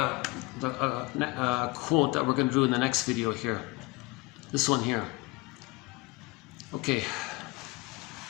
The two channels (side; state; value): right; quieter; 23.8 dB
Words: quote that we're going to do in the next video here. This one here. Okay.